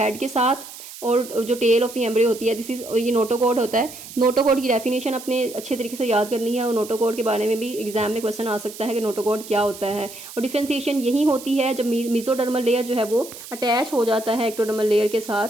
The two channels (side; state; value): right; noise; hiss, 14 dB below the sound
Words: के साथ, और जो टेल ऑफ द एम्ब्रियो होती है दिस इज ये नोटोकॉर्ड होता है। नोटोकॉर्ड की डेफिनेशन अपने अच्छे तरीके से याद करनी है, और नोटोकॉर्ड के बारे में भी एग्जाम में क्वेश्चन आ सकता है कि नोटोकॉर्ड क्या होता है। और डिफरेंशिएशन यही होती है जब मेसोडर्मल लेयर जो है वो अटैच हो जाता है एक्टोडर्मल लेयर के